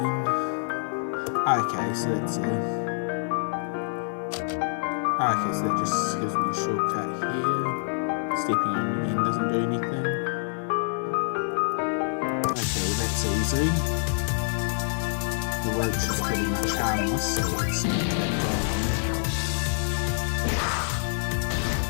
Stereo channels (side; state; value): right; silent; 61 dB below the other